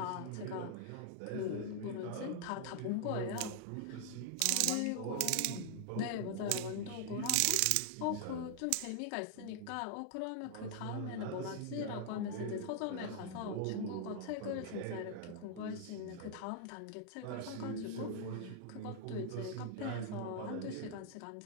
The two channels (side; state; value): both; different; correlation 0.00